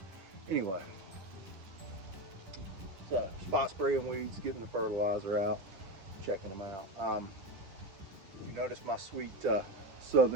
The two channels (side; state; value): left; late; 10 ms